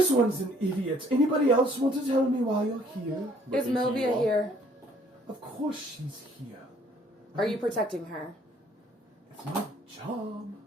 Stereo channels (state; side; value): normal; both; correlation 0.61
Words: one's an idiot. Anybody else want to tell me why you're here?" Is Looking to you Milvia all. here? Of course she's here. Are you protecting her? It's my job.